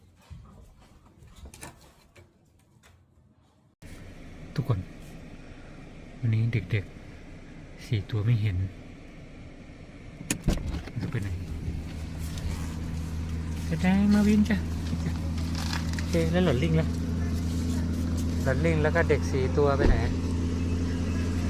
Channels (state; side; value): identical; both; correlation 1.00